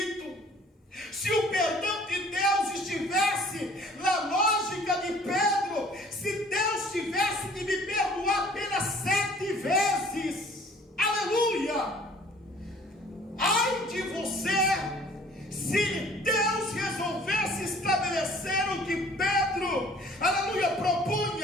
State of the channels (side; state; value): both; normal; correlation 0.53